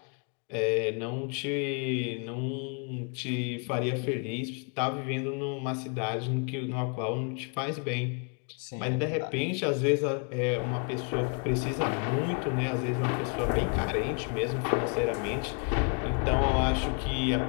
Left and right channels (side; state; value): right; quieter; 38.8 dB